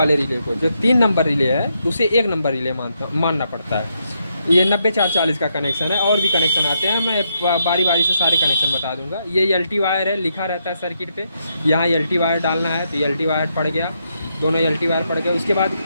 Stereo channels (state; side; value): inverted; both; correlation -0.78